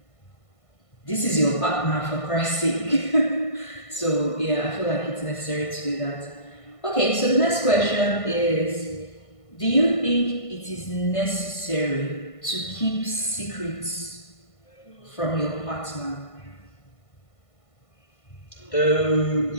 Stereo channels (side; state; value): right; late; 1.5 ms